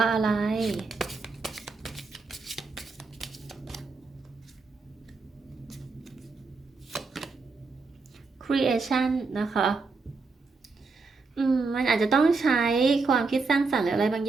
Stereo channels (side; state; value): left; quieter; 4.1 dB